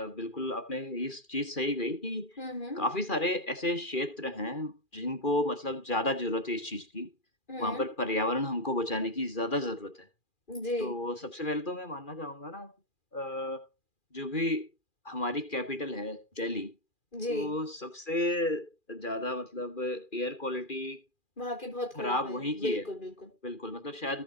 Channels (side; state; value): right; late; 2.4 ms